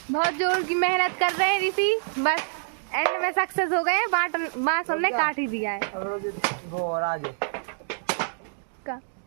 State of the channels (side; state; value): left; silent; digital silence